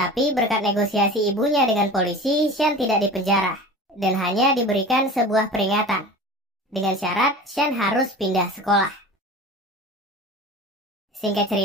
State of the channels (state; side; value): normal; both; correlation 0.36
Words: berkat negosiasi ibunya dengan polisi, Sean tidak dipenjara dan hanya diberikan sebuah peringatan. Dengan syarat, Sean harus pindah sekolah. Singkat